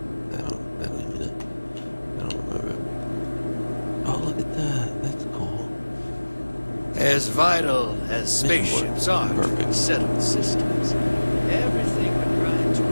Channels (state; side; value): inverted; both; correlation -1.00